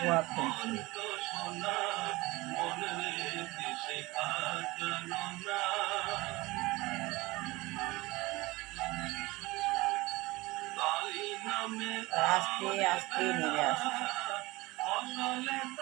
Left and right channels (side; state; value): left; quieter; 21.3 dB